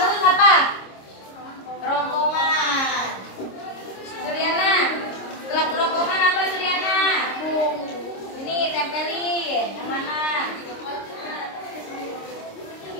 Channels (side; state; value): right; late; 26 ms